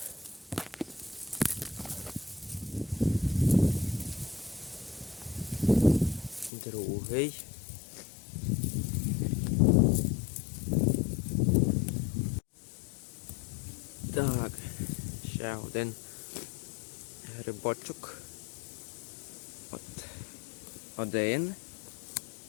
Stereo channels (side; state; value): right; drops out; at 6.5 s